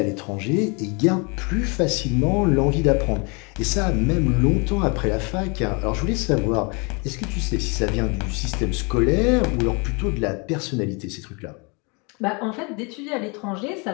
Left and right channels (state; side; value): quieter; right; 31.5 dB